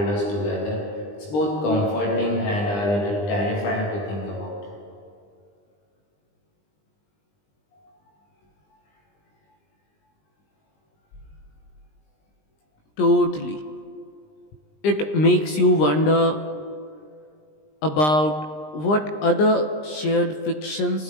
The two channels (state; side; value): late; right; 20 ms